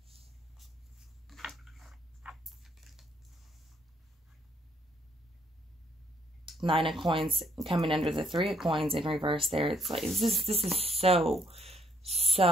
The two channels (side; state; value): both; normal; correlation 0.69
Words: Nine of Coins coming under the 3 of Coins in reverse there. It's like, this is